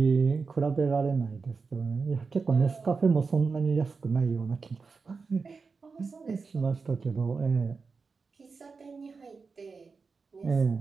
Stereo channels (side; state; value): left; quieter; 4.7 dB